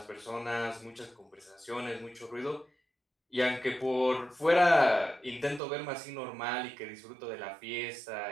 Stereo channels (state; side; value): drops out; left; at 5.6 s